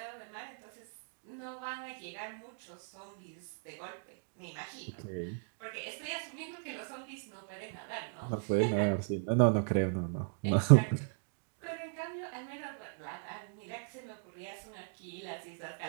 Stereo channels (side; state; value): left; silent; digital silence